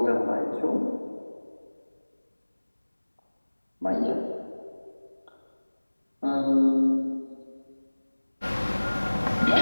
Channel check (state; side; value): inverted; both; correlation -1.00